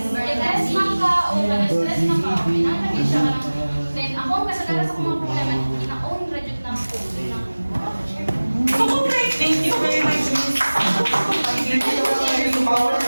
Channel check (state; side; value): inverted; both; correlation -1.00